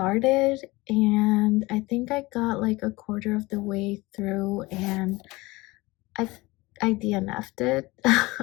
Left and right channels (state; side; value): quieter; right; 21.8 dB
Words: and I think I got like a quarter of the way through and I DNF'd it.